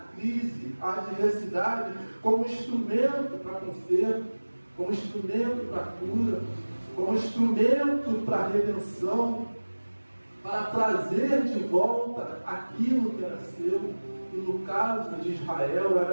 crise, a adversidade como instrumento para conserto, como instrumento para cura, como instrumento para redenção, para trazer de volta aquilo que era seu. E no caso de Israel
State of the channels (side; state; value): both; inverted; correlation -1.00